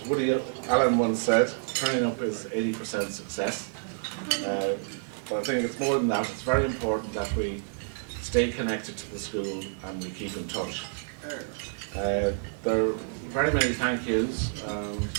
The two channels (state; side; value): silent; left; 59 dB below the other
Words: Woody Allen once said, turning up is 80% success. But I think it's more than that. It's very important that we stay connected to the school and we keep in touch. There are very many thank yous